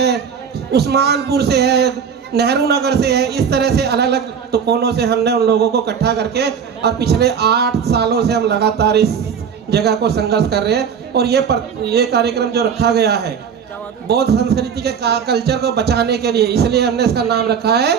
उस्मानपुर से है, नेहरू नगर से है। इस तरह से अलग अलग तो कोनों से हमने उन लोगों को इकट्ठा करके और पिछले 8 सालों से हम लगातार इस जगह को संघर्ष कर रहे हैं। और ये कार्यक्रम जो रखा गया है बौद्ध संस्कृति के कल्चर को बचाने के लिए, इसलिए हमने इसका नाम रखा है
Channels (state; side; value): quieter; left; 7.1 dB